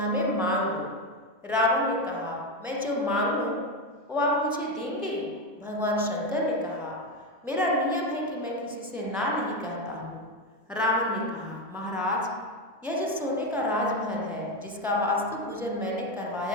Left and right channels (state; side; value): normal; both; correlation 0.12